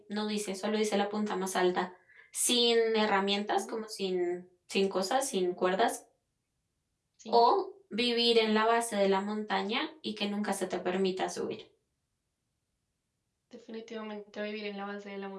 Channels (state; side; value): identical; both; correlation 1.00